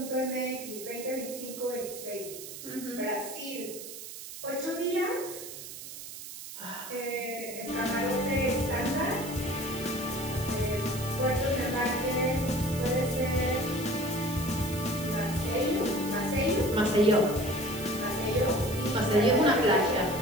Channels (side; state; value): right; noise; hiss, 11 dB below the sound